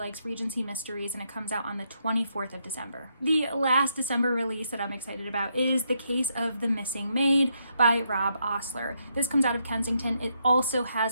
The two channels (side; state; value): both; inverted; correlation -0.77